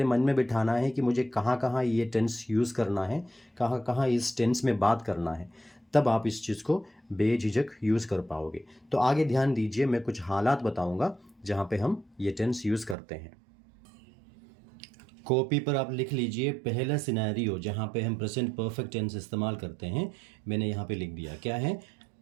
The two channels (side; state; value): left; drops out; at 13.0 s